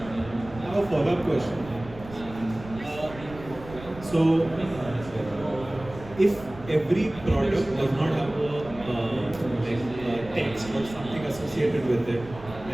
I have a follow-up question. So, if every product does not have a text or something associated with it,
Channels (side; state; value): right; noise; rumble, 16 dB below the sound